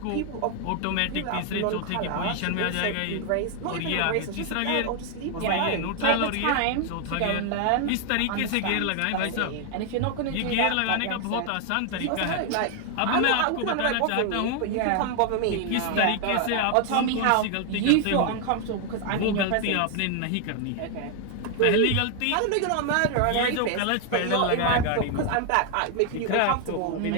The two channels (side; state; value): both; different; correlation 0.00